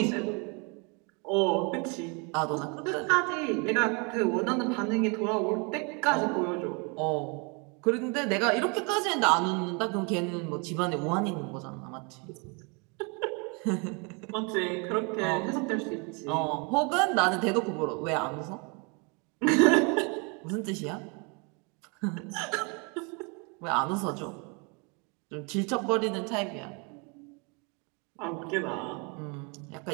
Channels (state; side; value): quieter; left; 32.6 dB